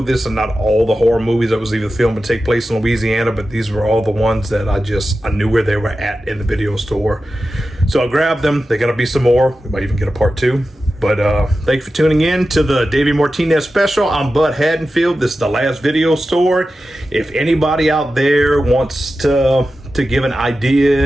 this is not all the horror movies that was either filmed and take place in Louisiana, but these were all the ones that I knew where they were at in the video store. So I grabbed them. They're going to be some more. We might even get a part 2. But thank you for tuning in to the Davey Martinez special. I'm Bud Haddonfield. This is the last video store. If anybody out there wants to give an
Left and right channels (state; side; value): normal; both; correlation 0.93